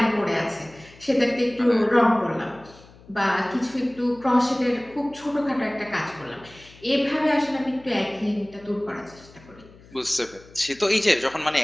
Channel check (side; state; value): left; noise; hum, 24 dB below the sound